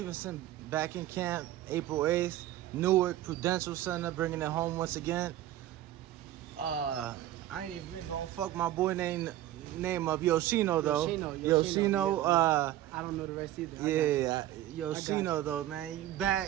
back in camp April 8th. Newark Prudential Center bringing it home once again. I ain't even gonna fuck my boy name of Yoshino though. Yoshino. I don't know the rest either. Yeah, Yoshino though, man. You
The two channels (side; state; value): left; quieter; 13.6 dB